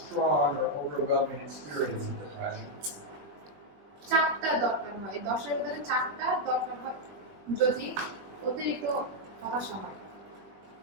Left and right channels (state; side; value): late; left; 21 ms